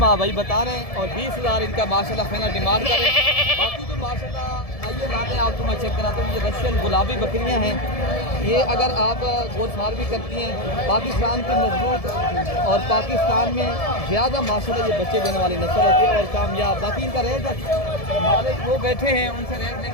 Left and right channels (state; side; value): late; right; 1.7 ms